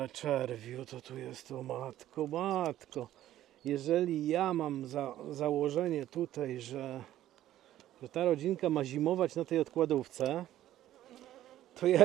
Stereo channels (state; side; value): quieter; left; 13.1 dB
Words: czerwiu to tu jest, o matko, matko. Jeżeli ja mam założenie tutaj, że ta rodzinka ma zimować na tej odkładówce, to